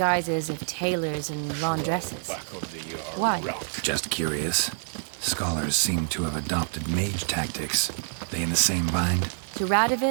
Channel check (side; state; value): left; silent; 58 dB below the other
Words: of tailors and laundresses. Why? Just curious. Scholars seem to have adopted mage tactics. They in the same bind? To